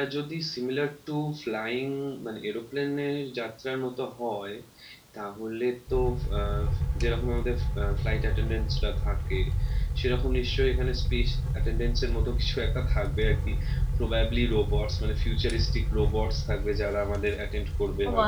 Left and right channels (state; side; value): identical; both; correlation 1.00